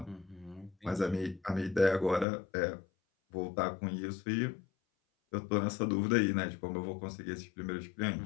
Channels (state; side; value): drops out; right; at 2.2 s